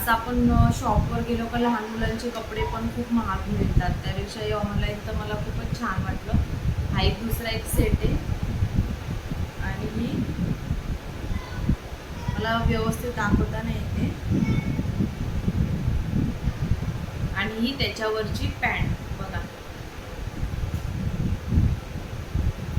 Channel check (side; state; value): both; identical; correlation 1.00